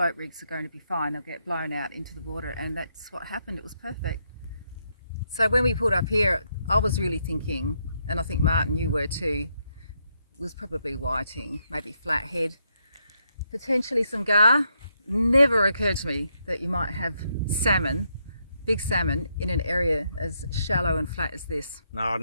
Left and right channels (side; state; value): both; inverted; correlation -0.78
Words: rigs are going to be fine. They'll get blown out into the water, and that's what happened. It was perfect. So when we pulled up here, I was really thinking, and I think Martin, you were too, was probably whiting, maybe flathead, potentially some gar. Never occurred to me that you might have salmon, big salmon, in an area as shallow and flat as this. No, I